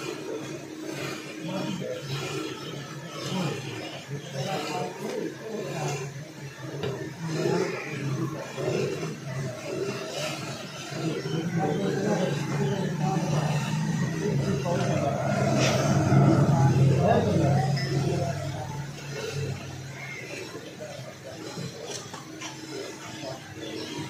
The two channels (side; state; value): both; identical; correlation 1.00